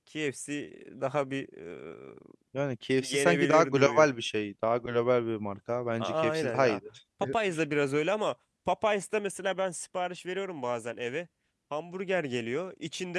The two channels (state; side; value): identical; both; correlation 1.00